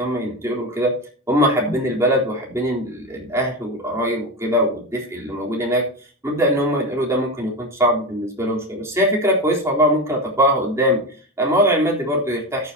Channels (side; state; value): both; normal; correlation 0.20